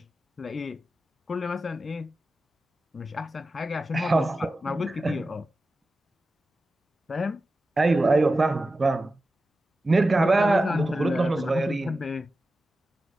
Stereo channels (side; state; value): both; normal; correlation 0.93